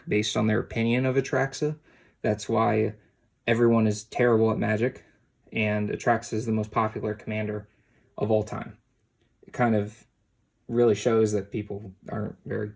based on their opinion of Atraxa. That's why everyone is terrible at Magic, and Atraxa is the most popular commander of all time. It kind of really shows that people aren't very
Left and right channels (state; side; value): identical; both; correlation 1.00